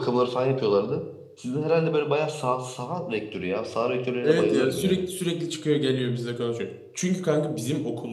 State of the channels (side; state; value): both; identical; correlation 1.00